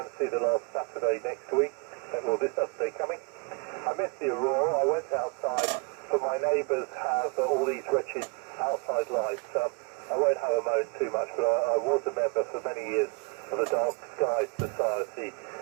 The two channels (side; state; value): left; quieter; 33.0 dB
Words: see the last Saturday next week. Well, this Saturday coming. I missed the Aurora. I went outside, but my neighbours have all these wretched outside lights. I won't have a moan too much, but I was a member for many years of the Dark Sky Society,